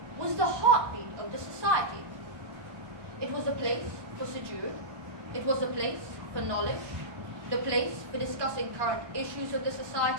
was the heartbeat of the society. It was a place for sujood, it was a place for knowledge, the place for discussing current issues of the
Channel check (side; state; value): left; late; 1.1 ms